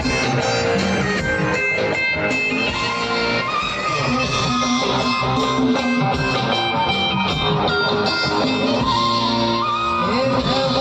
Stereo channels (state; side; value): identical; both; correlation 1.00